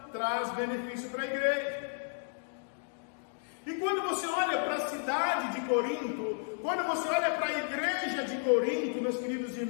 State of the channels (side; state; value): right; silent; digital silence